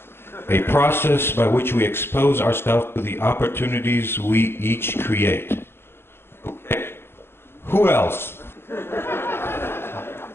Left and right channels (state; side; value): late; right; 0.11 ms